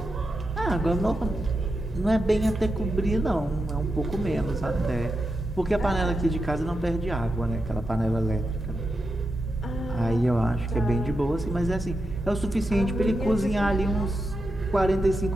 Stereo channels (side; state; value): both; normal; correlation 0.88